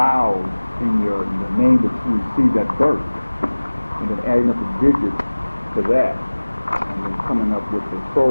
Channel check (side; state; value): both; inverted; correlation -1.00